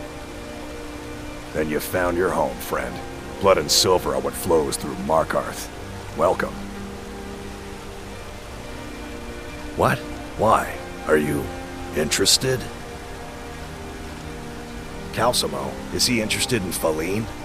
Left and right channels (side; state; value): both; identical; correlation 1.00